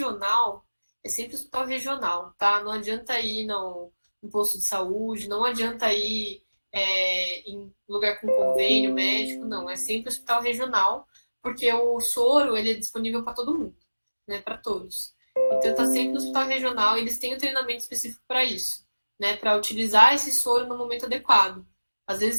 é sempre hospital regional, tá? Não adianta ir no posto de saúde, não adianta ir em lugar com convênio médico, não. É sempre hospital regional, porque o soro ele é disponível para todo mundo, né, para todos. Então, está sempre no hospital regional e eles têm um treinamento específico para isso, né? Para utilizar esse soro no momento adequado. Às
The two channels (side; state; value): both; inverted; correlation -1.00